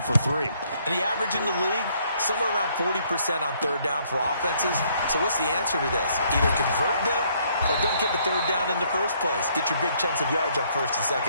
for 3. And the average in the league, somewhere around 40% on third down for offenses. So what's the answer to this? Either convert them or don't get the third down in the first place. Get your big chunks of yards on first and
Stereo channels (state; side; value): inverted; both; correlation -0.67